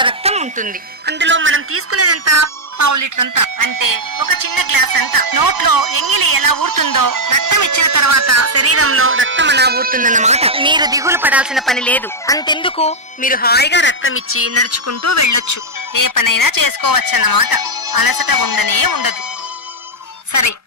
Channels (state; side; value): normal; both; correlation -0.02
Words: రక్తం ఉంటుంది. అందులో మనం తీసుకునేదంతా 1/2 లీటర్ అంతా, అంటే ఒక చిన్న గ్లాస్ అంతా. నోట్లో ఎంగిలి ఎలా ఊరుతుందో రక్తం ఇచ్చిన తర్వాత శరీరంలో రక్తం అలా ఊరుతుందన్నమాట. మీరు దిగులు పడాల్సిన పని లేదు. అంతెందుకు, మీరు హాయిగా రక్తం ఇచ్చి నడుచుకుంటూ వెళ్ళొచ్చు. ఏ పనైనా చేసుకోవచ్చన్నమాట. అలసట ఉండనే ఉండదు. సరే,